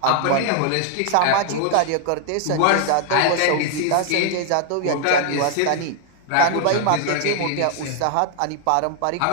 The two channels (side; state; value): both; different; correlation 0.00